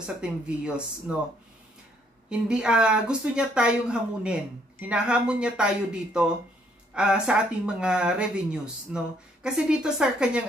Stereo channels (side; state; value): both; normal; correlation 0.68